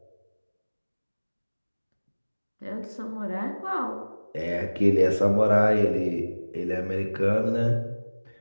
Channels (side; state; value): both; inverted; correlation -1.00